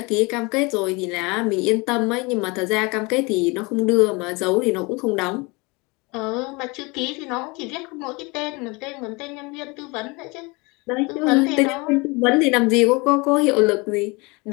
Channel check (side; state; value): right; quieter; 26.8 dB